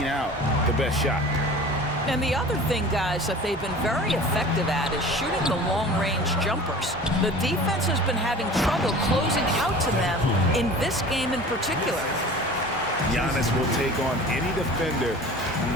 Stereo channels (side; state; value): both; normal; correlation 0.40